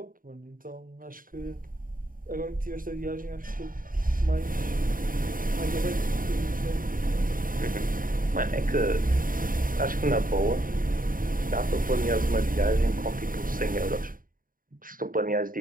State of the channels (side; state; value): left; late; 0.40 ms